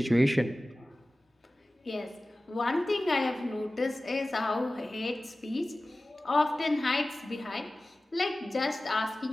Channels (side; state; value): both; normal; correlation 0.97